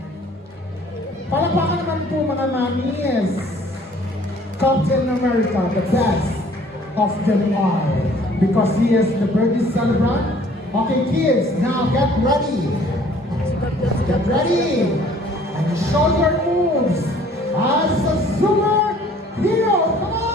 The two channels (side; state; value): both; normal; correlation 0.55